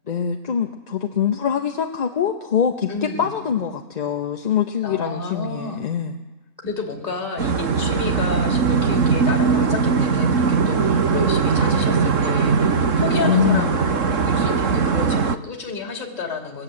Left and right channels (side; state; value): left; late; 3.7 ms